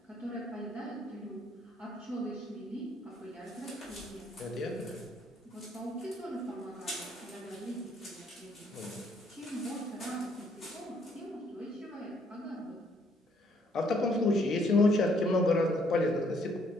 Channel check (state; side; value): normal; both; correlation 0.67